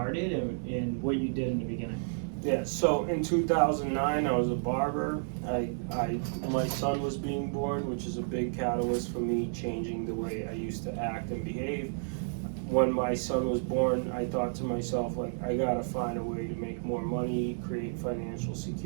and what you did in the beginning. Yeah, so in 2009 I was a barber. My son was being born, which is a big catalyst for me changing the way I used to act and behave. When my son was born, I thought to myself, like, I gotta find a way to make more money, create financial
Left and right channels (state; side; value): silent; left; digital silence